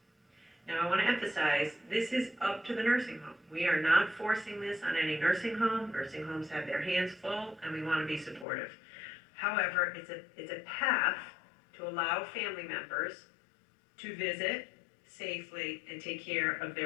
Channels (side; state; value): right; drops out; at 8.5 s